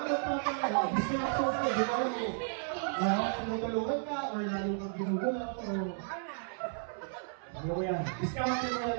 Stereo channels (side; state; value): left; silent; 55 dB below the other